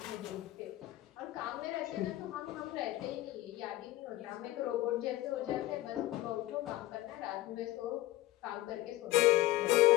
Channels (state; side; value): quieter; right; 16.5 dB